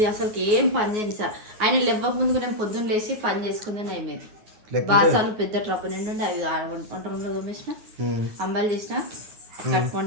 అసలు ఏం పని చేయను సార్. ఆయన లేవక ముందుకు నేను పొద్దున్న లేచి పని చేసుకుందని అయిపోయింది. బాసాలు పెద్ద ట్రప్ నిండి అవి వంట రూమ్లో తోమేసిన, అంబాలు చేసిన, కట్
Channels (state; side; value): late; left; 9.5 ms